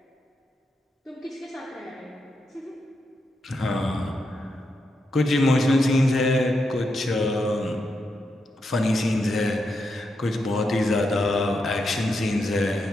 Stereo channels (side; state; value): both; normal; correlation 0.84